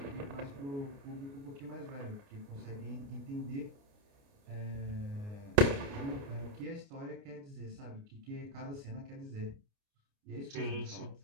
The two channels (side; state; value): left; late; 29 ms